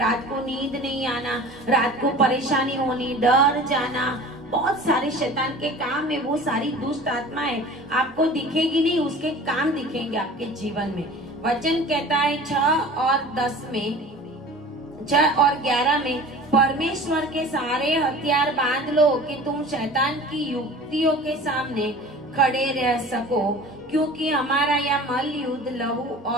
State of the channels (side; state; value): both; normal; correlation 0.41